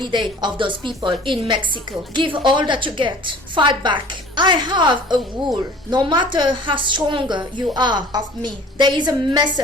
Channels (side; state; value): both; normal; correlation 0.47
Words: of those people in Mexico. Give all that you get. Fight back. I have a rule. No matter how stronger you are of me, there is a